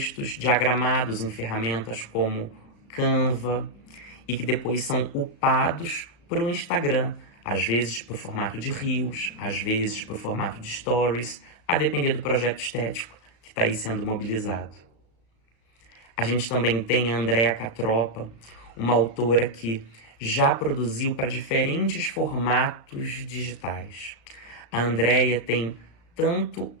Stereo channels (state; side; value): late; right; 35 ms